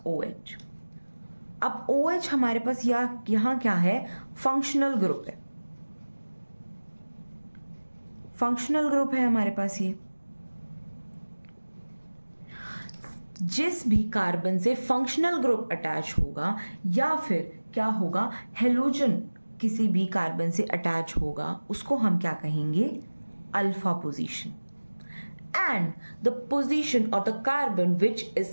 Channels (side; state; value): both; inverted; correlation -1.00